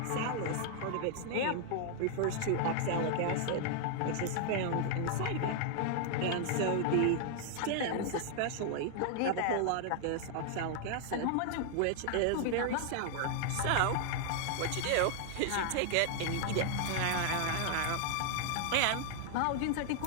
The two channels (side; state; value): both; different; correlation 0.00